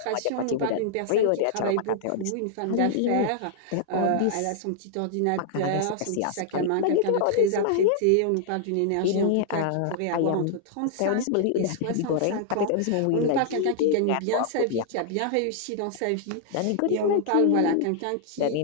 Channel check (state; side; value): different; both; correlation -0.01